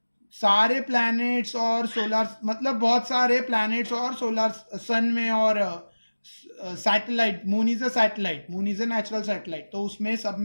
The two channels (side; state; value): both; inverted; correlation -1.00